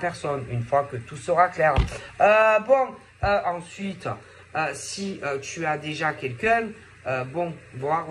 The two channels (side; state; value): both; identical; correlation 1.00